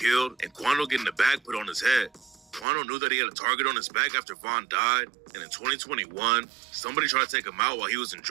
and Quando getting the bag put on his head. Quando knew that he had a target on his back after Von died, and in 2021, somebody tried to take him out while he was in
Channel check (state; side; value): drops out; left; at 2.7 s